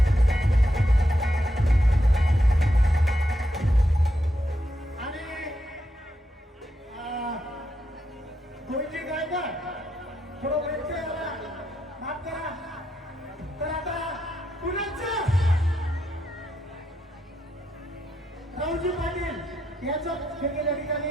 गोविंदजी गायकवाड थोडं व्यत्यय आला, माफ करा. तर आता पुण्याचं राहुलजी पाटील याचं या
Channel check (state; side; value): normal; both; correlation 0.82